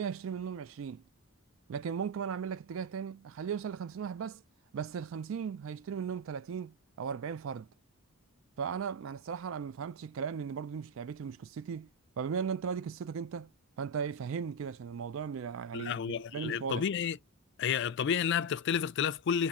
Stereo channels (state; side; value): normal; both; correlation 0.04